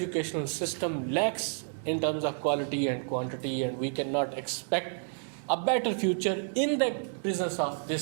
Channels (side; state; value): left; silent; digital silence